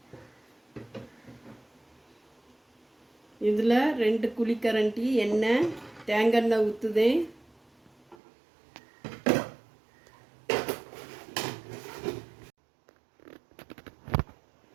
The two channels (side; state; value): left; drops out; at 8.2 s